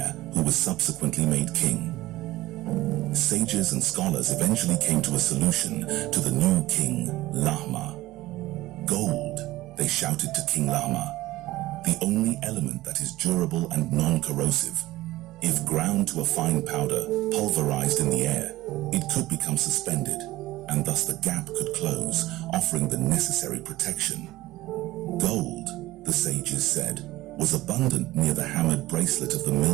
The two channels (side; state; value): left; quieter; 17.3 dB